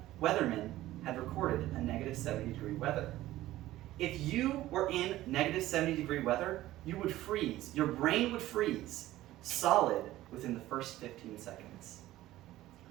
weathermen had recorded a negative 70 degree weather. If you were in negative 70 degree weather, you would freeze. Your brain would freeze solid within the first 15 seconds.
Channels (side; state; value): left; quieter; 15.5 dB